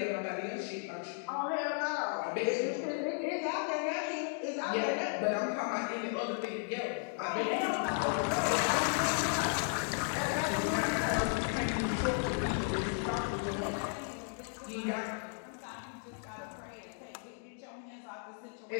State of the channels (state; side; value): silent; right; 55 dB below the other